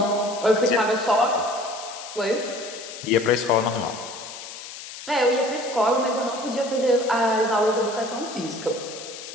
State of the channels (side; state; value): left; noise; hiss, 12 dB below the sound